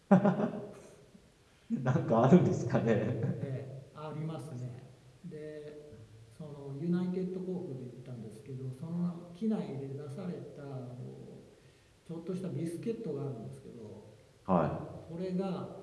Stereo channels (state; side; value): identical; both; correlation 1.00